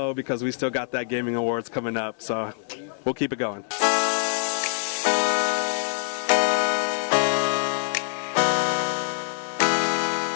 because we still got that Gaming Awards coming up. So we'll keep it going.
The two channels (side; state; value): right; silent; digital silence